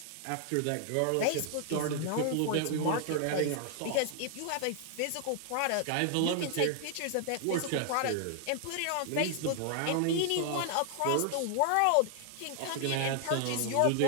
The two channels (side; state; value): both; different; correlation 0.00